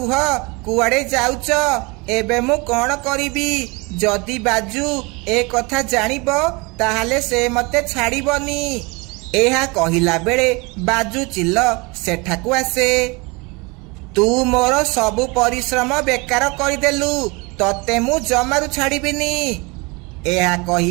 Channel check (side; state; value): left; quieter; 27.3 dB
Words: कुआड़े जाउच? एबे मु कौन करिबी? जदि बाजू ए कथा जानिबो ताहाले से मते छाड़िबनी। एहा कहिला बेले बाजू चिल सेठाकू आसे। तू मोर सबु परिश्रम बेकार करदेलु, तते मु जमारू छाड़िबिनी। एहा